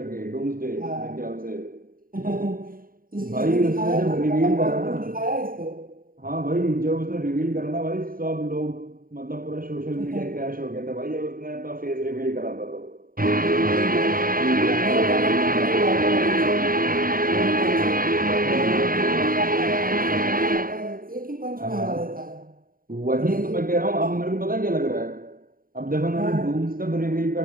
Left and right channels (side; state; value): left; late; 0.41 ms